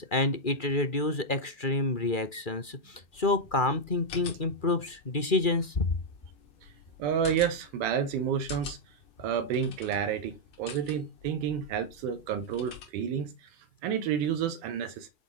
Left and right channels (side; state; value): right; late; 2.4 ms